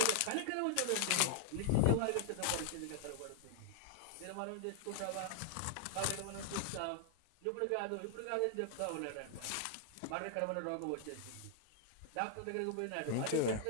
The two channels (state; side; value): different; both; correlation -0.01